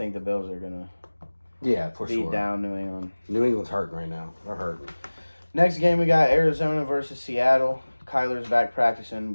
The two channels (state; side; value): inverted; both; correlation -1.00